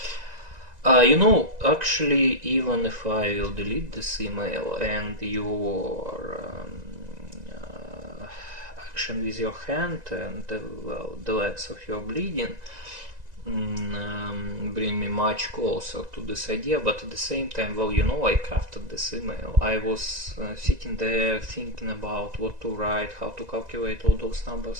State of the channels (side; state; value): left; late; 2.0 ms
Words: You know, actually, even if I will delete this email and your action with your hand and well, the legs of your bleeding bring me much closer to this idea, but at the same time, well, you know, I crafted this email. I was sitting there thinking about what to write, how to calculate all those